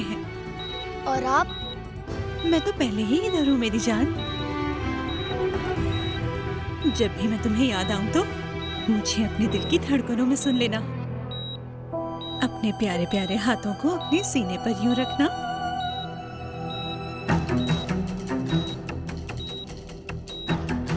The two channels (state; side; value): identical; both; correlation 1.00